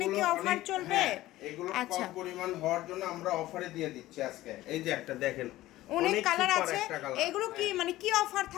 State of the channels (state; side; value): quieter; right; 16.2 dB